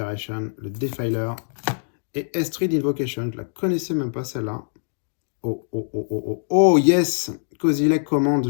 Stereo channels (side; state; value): right; silent; digital silence